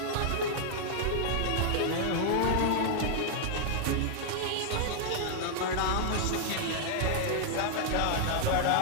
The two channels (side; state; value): both; different; correlation -0.01